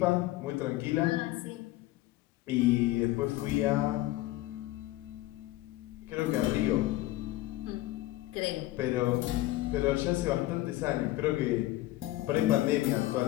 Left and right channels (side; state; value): right; quieter; 16.9 dB